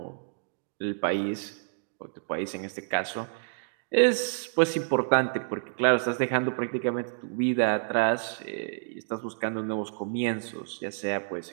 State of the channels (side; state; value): left; silent; digital silence